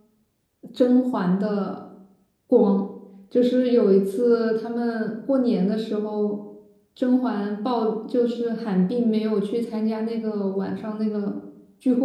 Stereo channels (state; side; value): identical; both; correlation 1.00